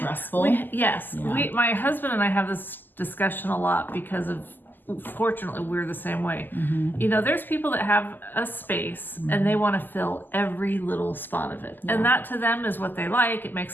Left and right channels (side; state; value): right; late; 0.089 ms